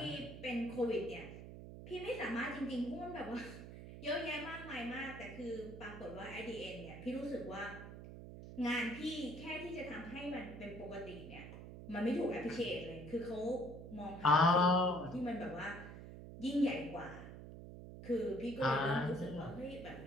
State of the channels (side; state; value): right; noise; hum, 12 dB below the sound